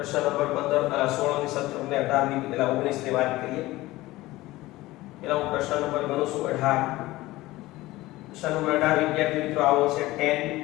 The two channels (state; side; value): quieter; right; 18.3 dB